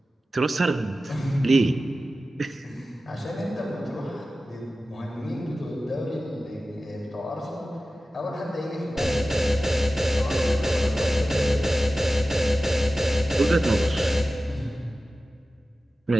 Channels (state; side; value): normal; both; correlation 0.95